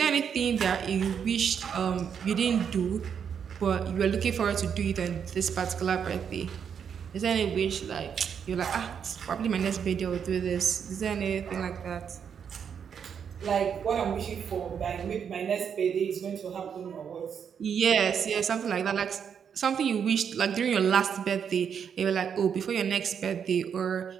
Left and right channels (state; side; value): quieter; left; 7.5 dB